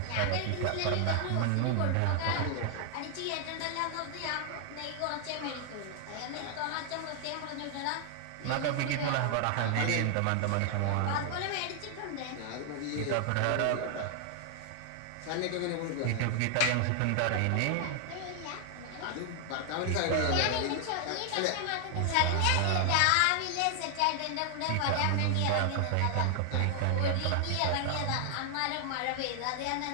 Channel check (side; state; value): both; different; correlation 0.00